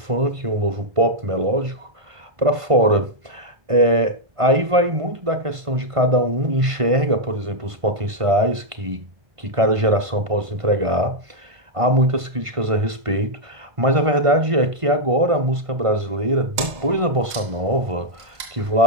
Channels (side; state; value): left; late; 1.5 ms